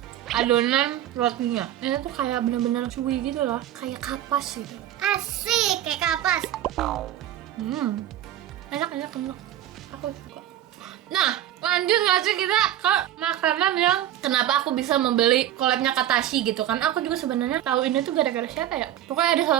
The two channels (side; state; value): left; quieter; 12.0 dB